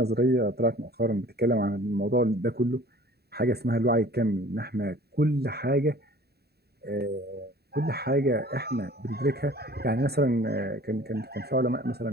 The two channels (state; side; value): late; left; 0.47 ms